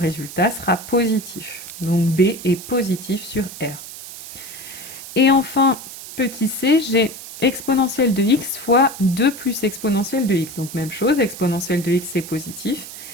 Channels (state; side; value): noise; right; hiss, 13 dB below the sound